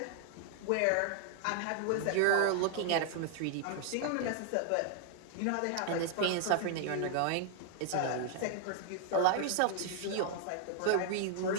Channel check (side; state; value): both; different; correlation 0.00